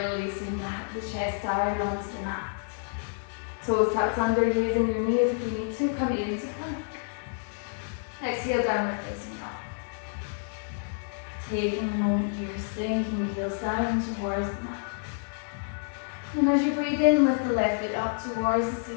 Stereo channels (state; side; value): silent; right; digital silence